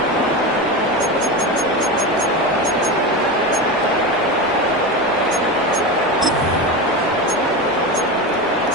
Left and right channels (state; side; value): normal; both; correlation 0.21